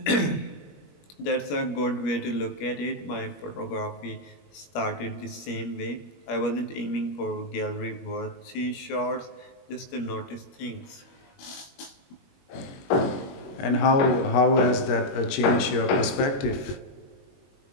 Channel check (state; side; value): late; right; 21 ms